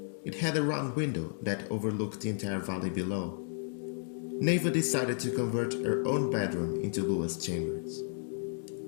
It had a round window that overlooked the entire valley below. Neva decided to convert her own bedroom into Lua's chambers.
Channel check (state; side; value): silent; right; digital silence